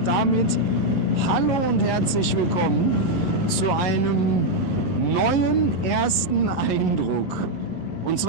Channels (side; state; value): right; late; 11 ms